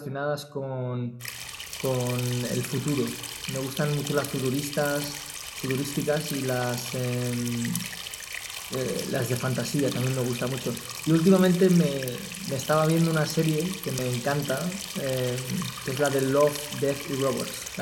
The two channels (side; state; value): both; identical; correlation 1.00